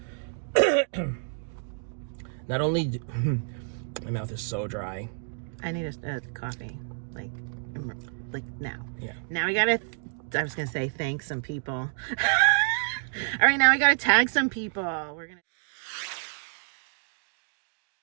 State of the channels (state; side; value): silent; left; 59 dB below the other